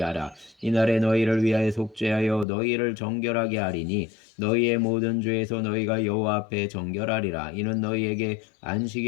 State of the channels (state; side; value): drops out; right; at 2.5 s